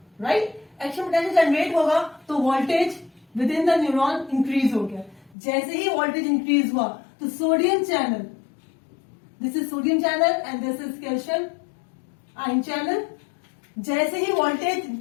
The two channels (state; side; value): drops out; right; at 5.4 s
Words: राइट. एक्शन पोटेंशियल जनरेट होगा तो voltage within the neuron increase हो गया. जैसे ही वोल्टेज इंक्रीज हुआ तो sodium channel, this is sodium channel and this is calcium ion channel. जैसे ही voltage